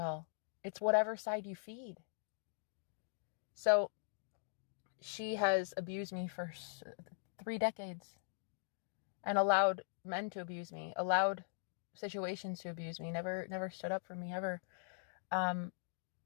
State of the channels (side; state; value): right; silent; digital silence